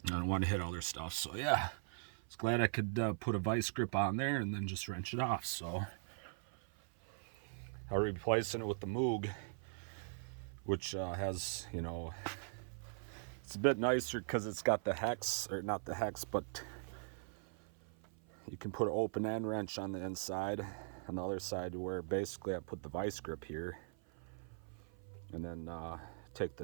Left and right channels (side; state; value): left; silent; 51 dB below the other